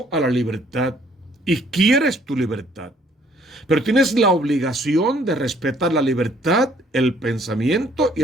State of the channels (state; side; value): normal; both; correlation 0.62